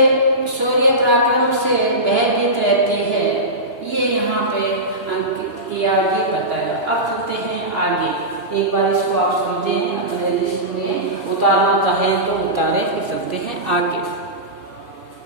शौर्य पराक्रम से भयभीत रहती है, ये यहाँ पे अंकित किया, ये बताया। अब चलते हैं आगे, एक बार इसको आप समझें, उतारना चाहे तो उतारे, फिर चलते हैं आगे।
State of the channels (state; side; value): late; left; 2.9 ms